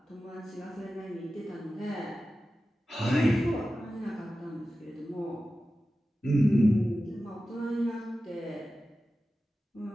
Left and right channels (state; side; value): normal; both; correlation 0.94